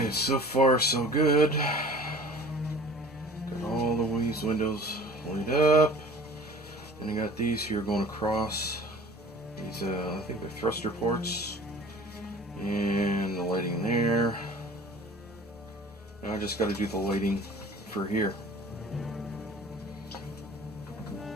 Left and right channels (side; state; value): both; normal; correlation 0.44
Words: so far so good. Got all these windows lit up. And I got these here going across. These, I think they're thruster ports. And the lighting there. Now I just got to do the lighting for here. Okay,